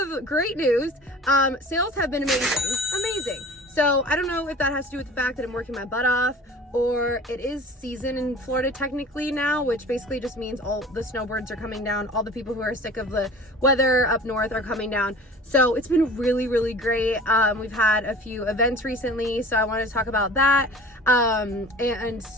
great news. Sales have been amazing. So I don't know if that has to do with the fact that I'm working my butt off, or it is season in Florida technically now, which basically just means all the snowbirds are coming down. All the people who are sick of the weather up north are coming down. So it's been really great. We've had a few events recently, so I wanted to talk about that. And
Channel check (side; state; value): both; normal; correlation 0.43